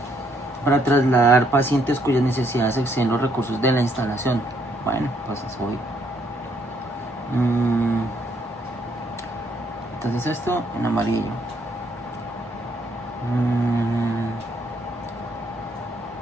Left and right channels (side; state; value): both; normal; correlation 0.70